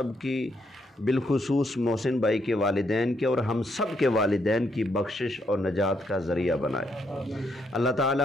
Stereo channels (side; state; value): both; normal; correlation 0.76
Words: کی، بالخصوص محسن بھائی کے والدین کے اور ہم سب کے والدین کی بخشش اور نجات کا ذریعہ بنائے۔ اللہ